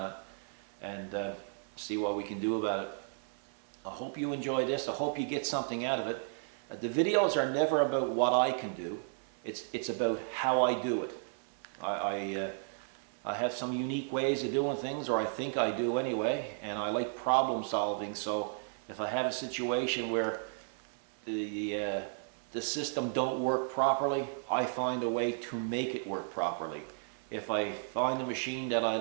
it, and see what we can do about it. I hope you enjoy this. I hope you get something out of it. The videos are never about what I can do. It's about how I do it. I have some unique ways of doing things, or I think I do anyway, and I like problem solving. So if I have a situation where the system don't work properly, I find a way to make it work properly. If I find a machine that I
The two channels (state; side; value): silent; left; 55 dB below the other